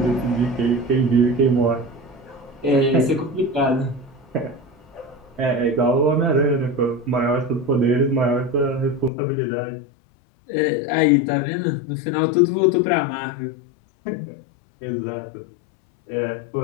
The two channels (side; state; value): right; drops out; at 9.1 s